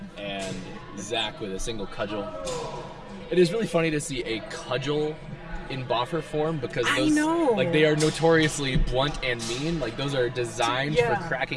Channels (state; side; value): identical; both; correlation 1.00